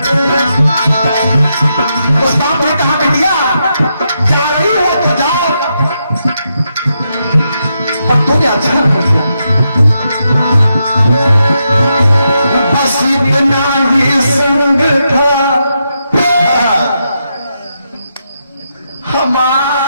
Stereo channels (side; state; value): both; inverted; correlation -0.83